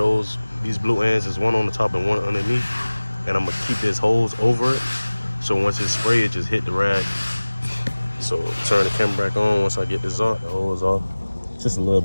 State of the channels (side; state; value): both; inverted; correlation -1.00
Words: these blue ends. There's one on the top and one underneath. And I'm gonna keep this hose over it. So once it's sprayed, it just hit the rag. So turn the camera back on once I get this off, the hose off. Just a little